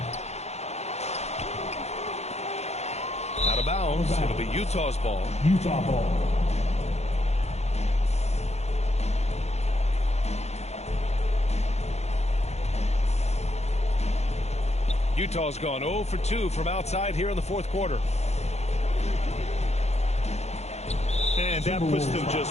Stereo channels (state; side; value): late; right; 0.31 ms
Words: Out of bounds. It'll be Utah's ball. Utah ball. Utah's gone 0 for 2 from outside here in the fourth quarter. And that puts them